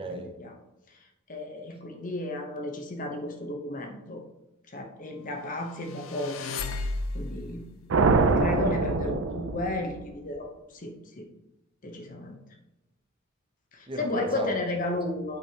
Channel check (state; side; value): normal; both; correlation 0.22